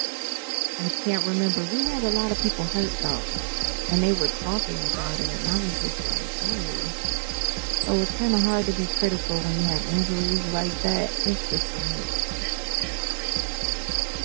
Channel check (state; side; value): silent; left; digital silence